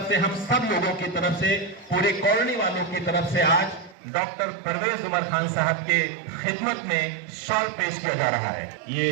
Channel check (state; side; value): drops out; left; at 4.0 s